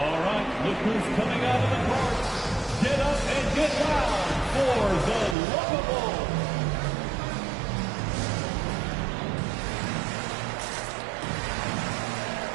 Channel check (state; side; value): drops out; left; at 5.4 s